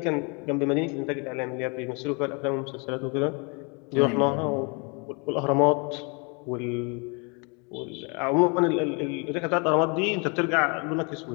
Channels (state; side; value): quieter; right; 32.7 dB